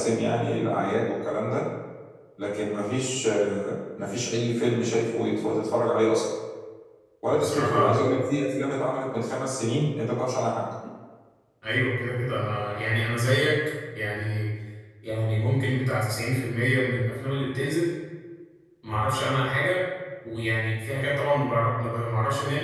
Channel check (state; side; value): identical; both; correlation 1.00